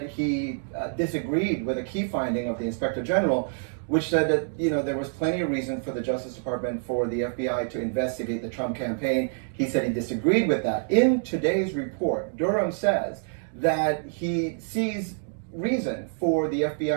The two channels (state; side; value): silent; left; digital silence